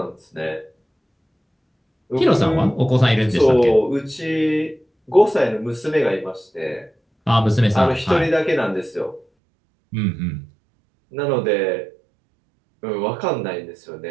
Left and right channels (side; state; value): left; drops out; at 9.2 s